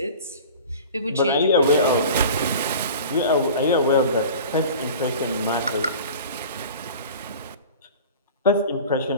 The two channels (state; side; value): inverted; both; correlation -0.39